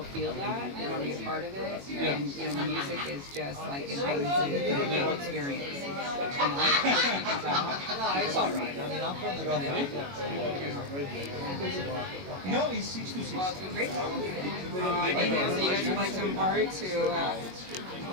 feel that and want to be a part of it. And music is just like it brings in the whole experience. And I hope you can tell. It's all right. I mean, I'm from the North. No, he's 6 to 6. Well, it's been great talking to you. So you guys would like to impart to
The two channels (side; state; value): left; late; 21 ms